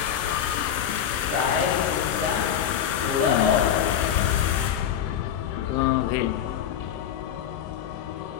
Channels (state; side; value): quieter; right; 9.4 dB